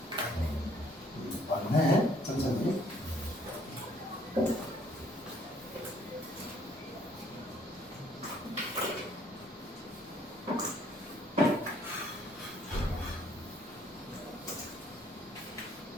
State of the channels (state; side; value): normal; both; correlation 0.63